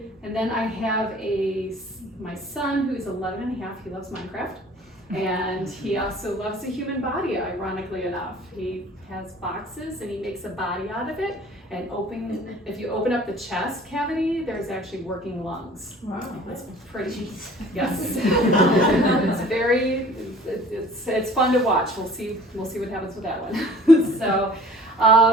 then I have my son, who is 11 and a half. He loves Minecraft. And he also loves the human body, ironically enough. He has boxes and he makes a body out of it. And if you open up the chest cavity, there's actually working lungs. Wow. It's pretty, yes. It's fun to watch. We'll see what happens with that one. So,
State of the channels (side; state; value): both; normal; correlation 0.49